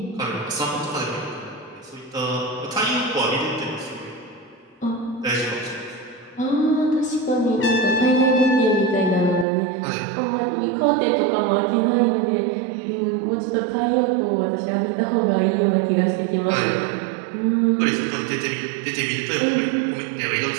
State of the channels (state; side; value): drops out; left; at 9.5 s